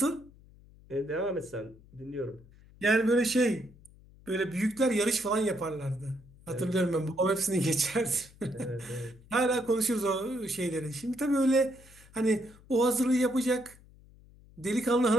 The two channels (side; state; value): left; noise; hum, 24 dB below the sound